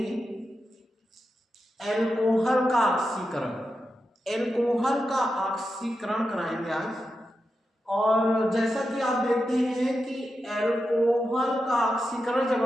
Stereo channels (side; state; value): both; normal; correlation 0.89